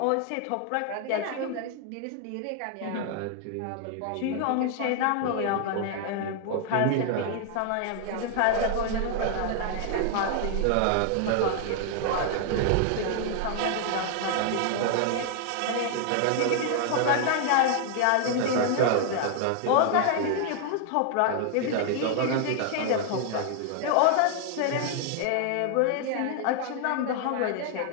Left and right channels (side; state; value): both; different; correlation 0.00